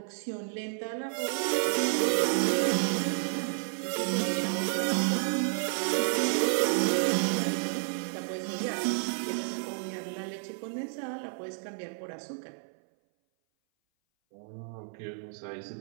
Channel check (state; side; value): silent; left; 57 dB below the other